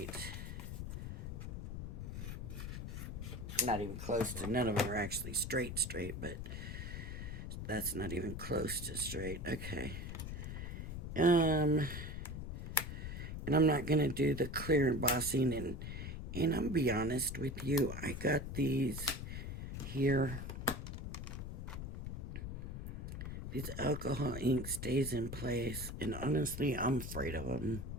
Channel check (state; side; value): noise; left; rumble, 6 dB below the sound